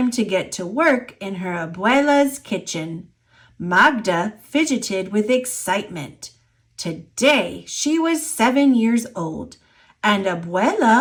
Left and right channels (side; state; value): both; identical; correlation 1.00